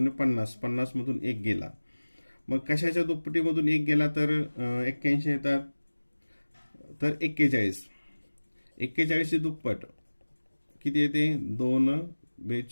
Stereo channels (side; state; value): both; inverted; correlation -1.00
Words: 50, 50 मधून 1 गेला. मग कशाच्या दुप्पटीमधून 1 गेला तर 81 येतात. तर 41, 41ची दुप्पट किती येते? 2